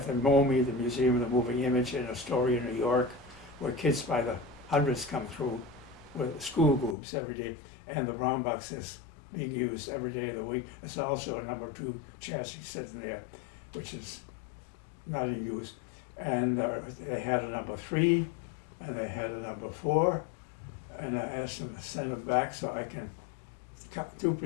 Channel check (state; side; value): drops out; right; at 7.0 s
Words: the MoMI, the Museum of the Moving Image in Astoria, New York, where kids by the hundreds come through with school groups every day, and the brown box is being used every day of the week. There's also a number 2 chassis sitting there, which is not in use. And they had a number 3, and they had a number 4, and I asked them to send them back so I can